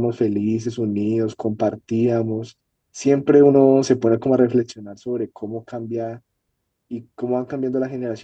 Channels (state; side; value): identical; both; correlation 1.00